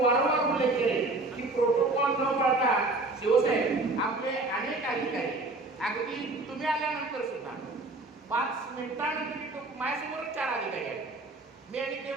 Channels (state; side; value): quieter; left; 3.1 dB